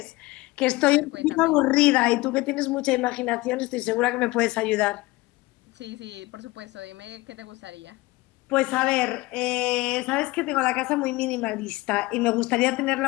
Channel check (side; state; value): right; quieter; 20.9 dB